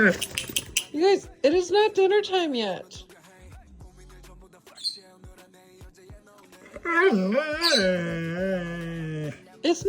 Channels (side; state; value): both; identical; correlation 1.00